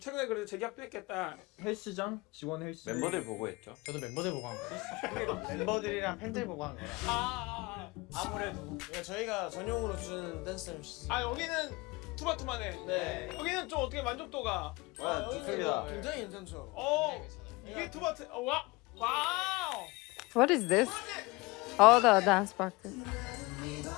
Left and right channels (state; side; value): quieter; right; 23.7 dB